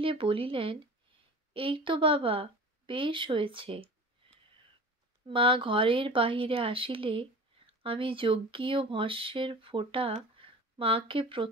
বলিলেন, এই তো বাবা, বেশ হয়েছে। মা ঘরের বাহিরে আসিলে আমি যজ্ঞীয় ভস্যের ফোঁটা মাকে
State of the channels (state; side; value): normal; both; correlation 0.38